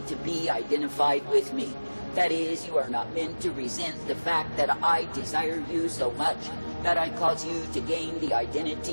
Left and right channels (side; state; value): both; inverted; correlation -1.00